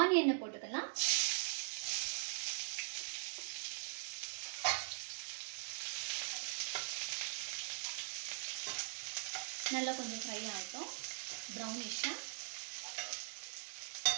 போட்டுக்கலாம். நல்லா கொஞ்சம் ஃப்ரை ஆகட்டும், ப்ரௌனிஷாக.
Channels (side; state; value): left; silent; digital silence